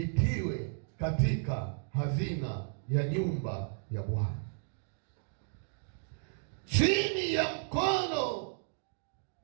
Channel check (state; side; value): silent; left; digital silence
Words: katika hazina ya nyumba ya Bwana, chini ya mkono